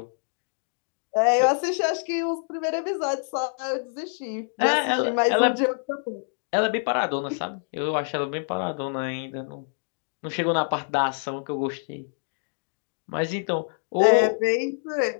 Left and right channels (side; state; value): right; silent; 61 dB below the other